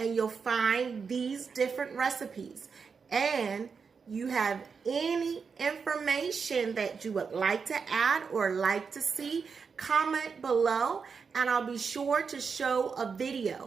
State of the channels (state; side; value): quieter; left; 5.6 dB